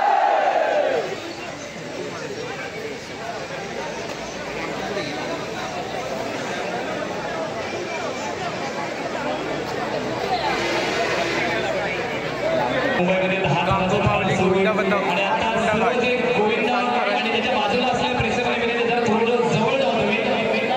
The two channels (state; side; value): identical; both; correlation 1.00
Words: मुंबईमध्ये 10 गांगोमावली गोविंदा बंदा आणि आता सर्व जे गोविंदा आणि त्याच्या बाजूला असलेल्या प्रेक्षकांमध्ये जरा थोडं जवळ जाऊ तुम्ही.